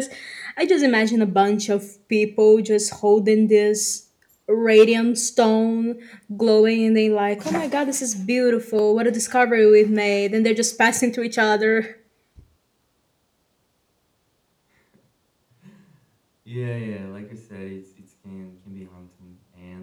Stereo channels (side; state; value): both; identical; correlation 1.00